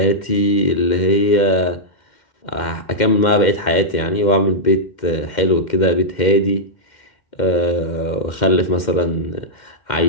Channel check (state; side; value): late; right; 2.1 ms